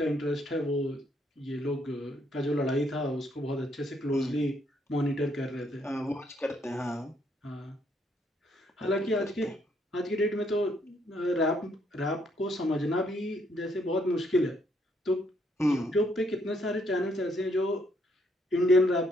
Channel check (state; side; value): normal; both; correlation 0.71